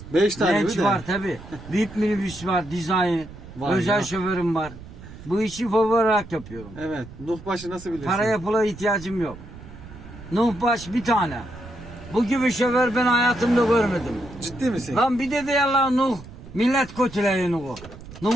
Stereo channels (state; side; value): noise; right; rumble, 16 dB below the sound